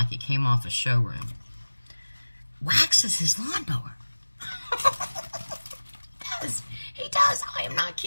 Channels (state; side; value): inverted; both; correlation -1.00